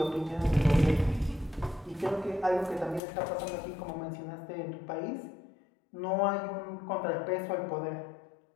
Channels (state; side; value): drops out; right; at 3.0 s